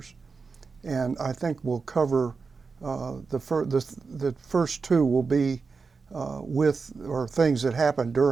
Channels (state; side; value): quieter; left; 4.8 dB